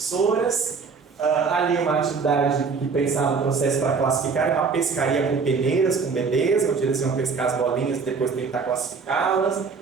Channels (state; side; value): quieter; left; 5.1 dB